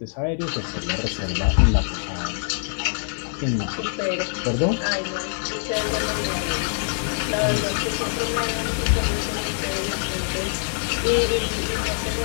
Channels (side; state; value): right; silent; digital silence